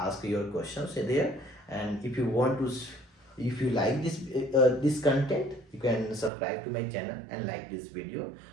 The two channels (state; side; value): drops out; left; at 6.3 s